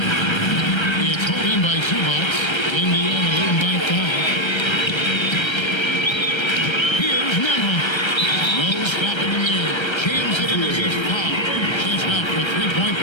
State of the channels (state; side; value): late; right; 1.3 ms